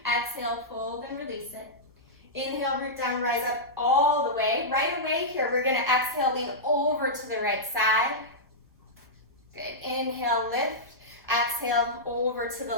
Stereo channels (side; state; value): both; normal; correlation -0.11